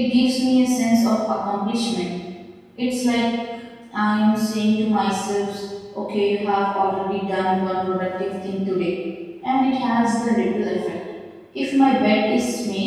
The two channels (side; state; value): both; identical; correlation 1.00